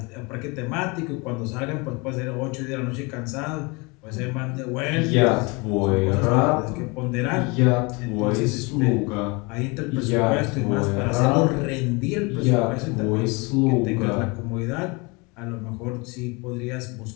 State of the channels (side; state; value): right; quieter; 27.9 dB